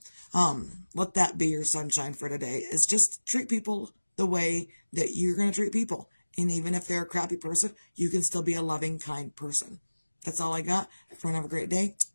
let that be your sunshine for today, is just treat people the way that you're going to treat people. And even if they're a crappy person, you can still be a loving, kind person. That's all I got. Everyone have a great day.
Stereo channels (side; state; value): both; inverted; correlation -1.00